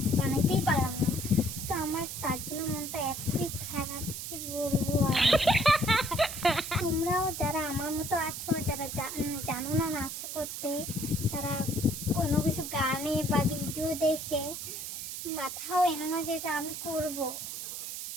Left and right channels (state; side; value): noise; right; hiss, 6 dB below the sound